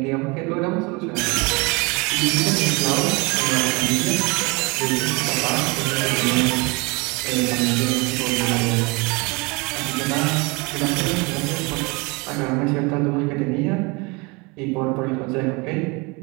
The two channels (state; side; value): quieter; left; 27.4 dB